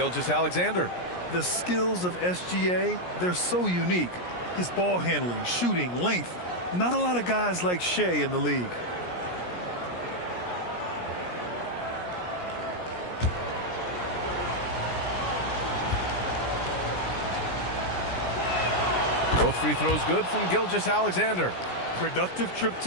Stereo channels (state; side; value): late; right; 17 ms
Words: The skills of SGA, they're so unique. His ball handling, shooting, length. Not a lot of guys like Shai in the league. Both free throws good from Gilgeous-Alexander. Productive trip